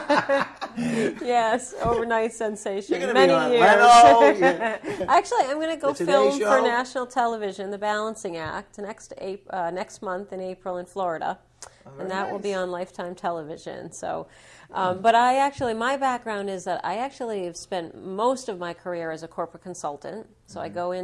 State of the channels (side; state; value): both; identical; correlation 1.00